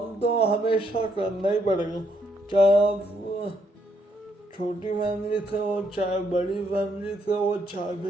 तो हमेशा करना ही पड़ेगा, चाहे आप छोटी फैमिली से हो, चाहे बड़ी फैमिली से हो, चाहे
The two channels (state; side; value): normal; both; correlation 0.74